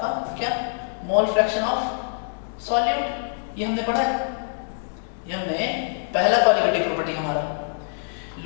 क्या? Mole fraction of solute. ये हमने पढ़ा है, ये हमने पहला क्वालिटेटिव प्रॉपर्टी हमारा,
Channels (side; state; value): right; silent; digital silence